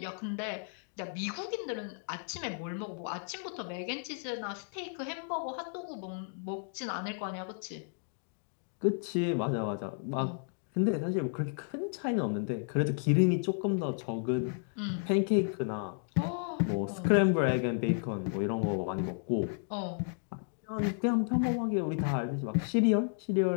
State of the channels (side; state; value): right; silent; digital silence